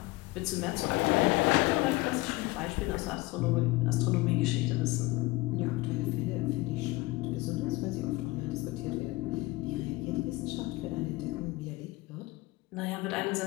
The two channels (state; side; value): quieter; right; 21.1 dB